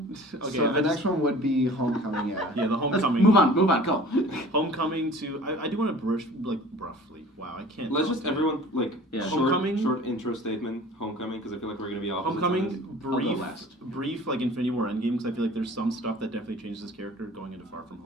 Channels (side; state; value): both; normal; correlation 0.45